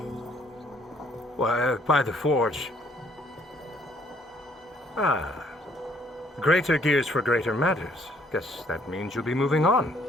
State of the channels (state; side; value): normal; both; correlation 0.64